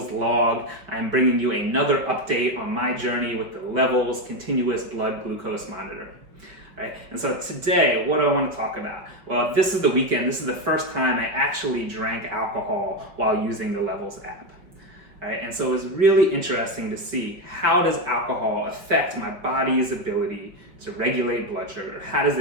Log. I'm bringing you another update on my journey with the Levels Continuous Blood Glucose Monitor. All right, and so today, what do I want to talk about? Well, this is the weekend. This is the first time I actually drank alcohol while using the Levels app. All right, and so it was really interesting to see how does alcohol affect my body's ability to regulate blood sugar? How does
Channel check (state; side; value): late; left; 5.5 ms